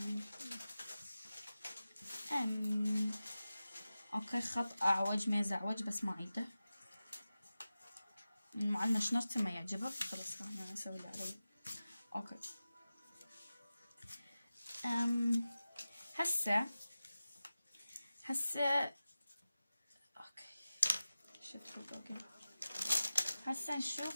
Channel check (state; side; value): inverted; both; correlation -0.95